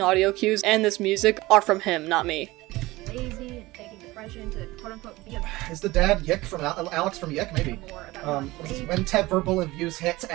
cues and this music are from him, not me. Lazy and faking depression to quote-unquote be a Is the dad Yick from Alex from Yick? Maybe. more about What is this? When verbal abuse hits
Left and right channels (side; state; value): left; quieter; 19.7 dB